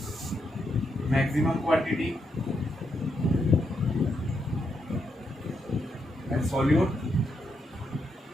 maximum quantity and solute,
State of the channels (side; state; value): both; normal; correlation 0.81